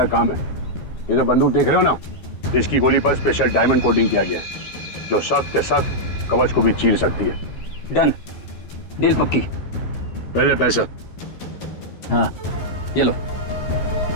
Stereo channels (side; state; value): right; late; 13 ms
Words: काम है। ये जो बंदूक देख रहे हो ना, इसकी गोली पर स्पेशल डायमंड कोटिंग किया गया है, जो सख्त सख्त कवच को भी चीर सकती है। डन, डील पक्की। पहले पैसा। हाँ ये लो,